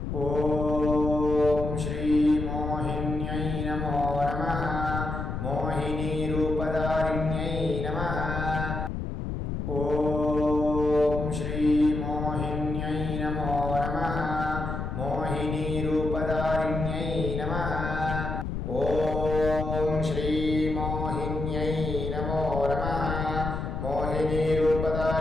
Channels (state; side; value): noise; left; rumble, 4 dB below the sound